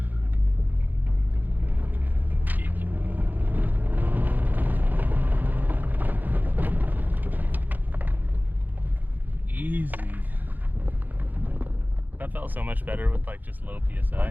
Easy. That felt so much better with like just low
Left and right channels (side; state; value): left; late; 0.085 ms